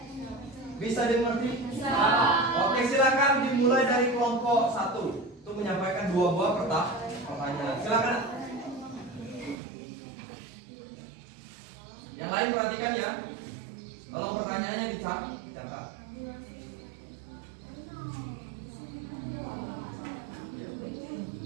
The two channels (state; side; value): drops out; left; at 9.6 s